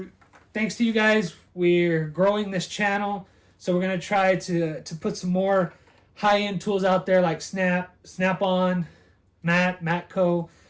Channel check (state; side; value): identical; both; correlation 1.00